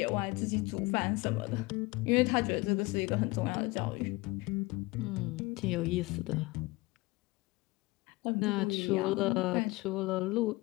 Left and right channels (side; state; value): right; quieter; 22.5 dB